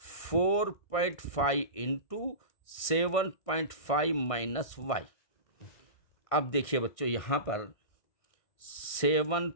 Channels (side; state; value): right; late; 1.6 ms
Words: into 7.5 minus y। अब देखिए बच्चों, यहाँ पर